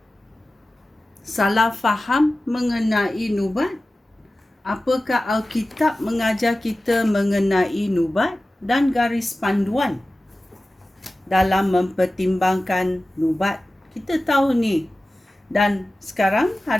salah faham mengenai nubat? Apakah Alkitab mengajar kita mengenai nubat dan garis panduan dalam mempertimbangkan nubat? Kita tahu ni. Dan sekarang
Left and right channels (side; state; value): both; normal; correlation 0.96